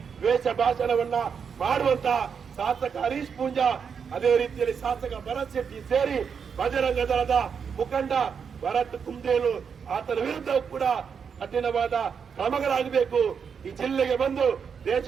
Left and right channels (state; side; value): quieter; left; 6.6 dB